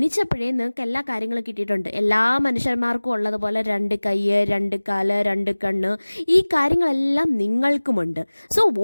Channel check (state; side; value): inverted; both; correlation -1.00